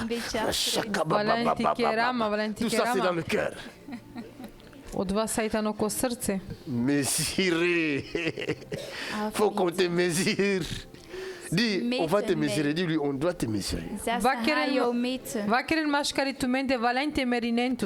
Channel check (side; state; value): both; identical; correlation 1.00